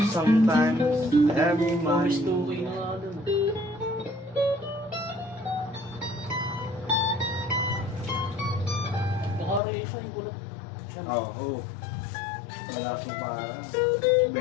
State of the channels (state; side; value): drops out; right; at 9.6 s